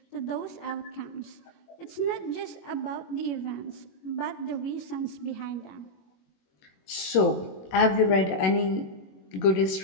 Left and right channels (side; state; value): right; late; 21 ms